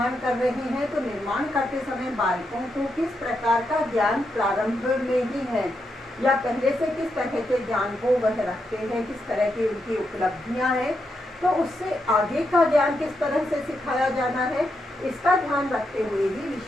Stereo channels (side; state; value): both; normal; correlation 0.83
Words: कर रहे हैं तो निर्माण करते समय बालकों को किस प्रकार का ज्ञान प्रारंभ में ही है या पहले से किस तरह के ज्ञान को वह रखते हैं, किस तरह की उनकी उपलब्धियां हैं, तो उससे आगे का ज्ञान किस तरह से सिखाया जाना है, इसका ध्यान रखते हुए ही